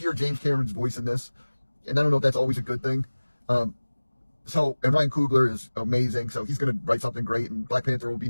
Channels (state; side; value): inverted; both; correlation -1.00